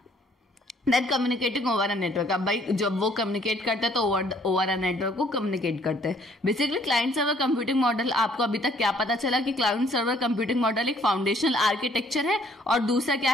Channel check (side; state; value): both; normal; correlation 0.62